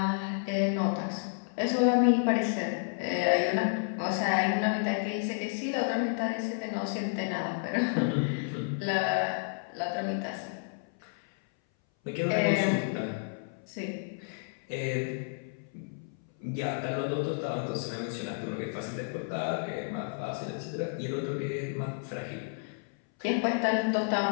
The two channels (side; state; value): right; silent; 57 dB below the other